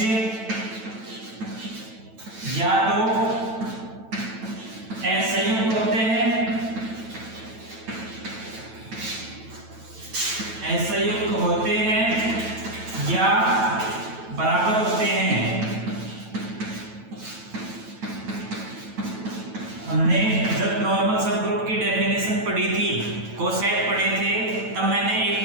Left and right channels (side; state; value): left; late; 9.1 ms